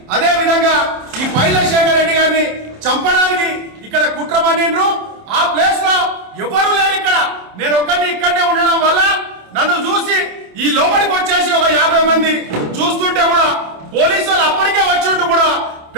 అదే విధంగా ఈ పైలశేఖర్ రెడ్డి గారిని చంపడానికి ఇక్కడ కుట్ర పన్నిండ్రు. ఆ ప్లేస్ లో ఎవరు లేరు. ఇక్కడ నేను ఒక్కడిని ఇక్కడనే ఉండడం వల్ల నన్ను చూసి ఈ లోపలికి వచ్చేసి ఒక 50 మంది చూస్తుంటే కూడా పోలీసు వాళ్ళు అప్పటికే వచ్చి కూడా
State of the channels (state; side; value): late; left; 27 ms